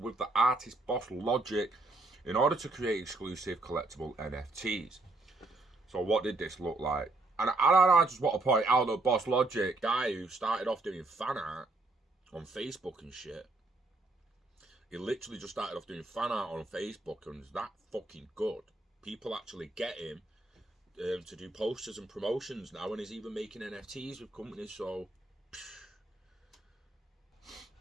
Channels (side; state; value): left; quieter; 3.1 dB